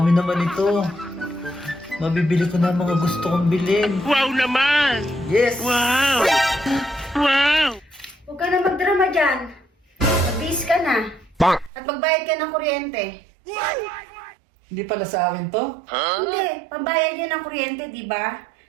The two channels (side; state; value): left; drops out; at 11.7 s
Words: naman ito. Mabibili ko na ang mga gusto kong bilhin. Wow naman! Yes! Wow! Wow! Huwag ka na magdrama dyan. Mag-bis ka na. Bang! At magbayad ka ng kuryente. Hindi pala sa akin to? Hindi, pambayad yun ng kuryente, di ba?